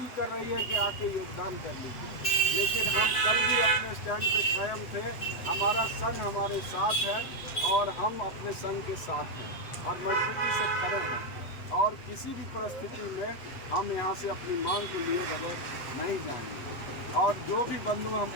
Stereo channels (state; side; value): late; right; 8.0 ms